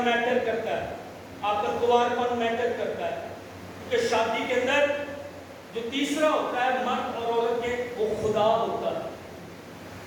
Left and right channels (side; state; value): both; identical; correlation 1.00